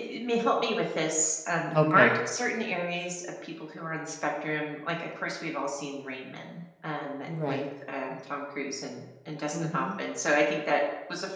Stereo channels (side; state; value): both; identical; correlation 1.00